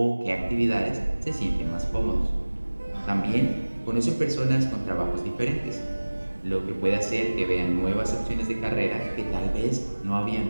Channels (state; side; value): inverted; both; correlation -1.00